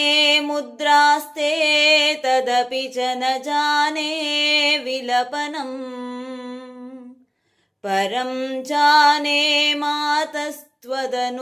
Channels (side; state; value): both; identical; correlation 1.00